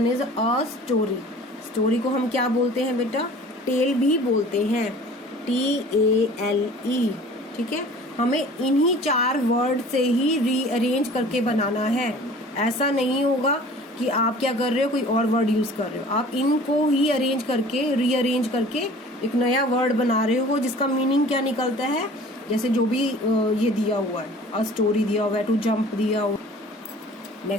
is a story. Story को हम क्या बोलते हैं बेटा? टेल भी बोलते हैं, TALE, ठीक है। हमें इन्हीं 4 वर्ड से ही रीअरेंज करके बनाना है। ऐसा नहीं होगा कि आप क्या कर रहे हो, कोई और वर्ड यूज कर रहे हो, आप इनको ही अरेंज करके रीअरेंज करके एक नया वर्ड बना रहे हो जिसका मीनिंग क्या निकलता है, जैसे जो भी ये दिया हुआ है, अ स्टोरी दिया हुआ है, टू जंप दिया हुआ।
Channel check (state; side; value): normal; both; correlation 0.46